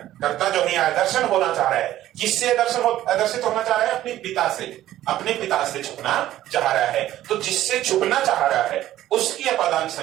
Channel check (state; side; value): quieter; left; 13.6 dB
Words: कर्ता जो है आदर्शन होना चाह रहा है, किससे आदर्शित होना चाह रहा है? अपने पिता से, अपने पिता से छुपना चाह रहा है। तो जिससे छुपना चाह रहा है उसकी अपादान